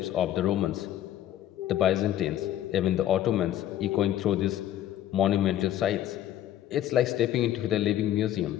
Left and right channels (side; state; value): right; quieter; 12.1 dB